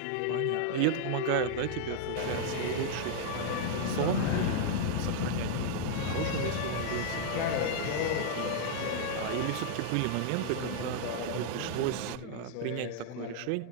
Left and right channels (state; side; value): different; both; correlation -0.01